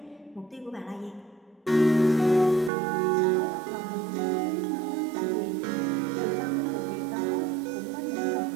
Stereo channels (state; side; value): drops out; left; at 2.7 s